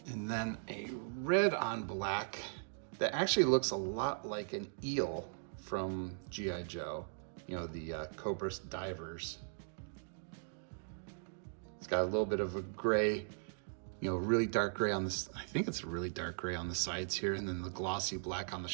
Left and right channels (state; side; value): silent; left; digital silence